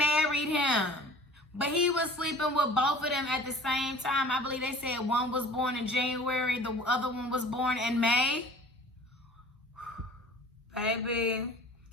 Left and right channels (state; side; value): normal; both; correlation 0.45